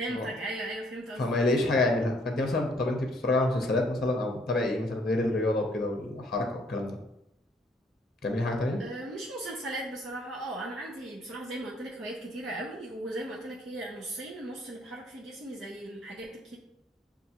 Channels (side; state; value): both; normal; correlation 0.64